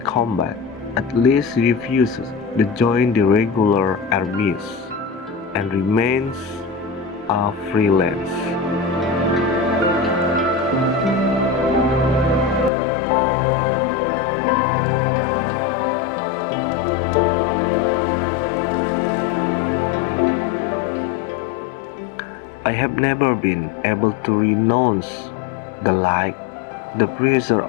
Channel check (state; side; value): drops out; right; at 12.7 s